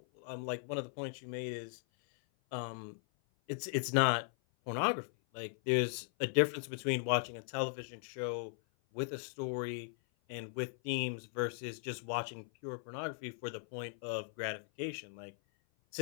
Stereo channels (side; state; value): right; silent; 52 dB below the other